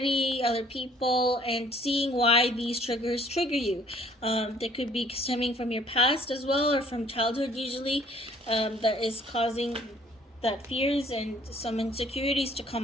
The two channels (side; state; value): both; normal; correlation 0.59